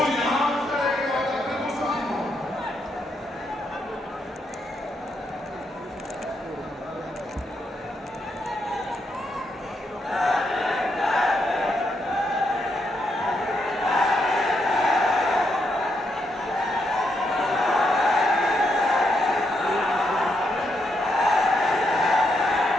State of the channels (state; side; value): normal; both; correlation 0.79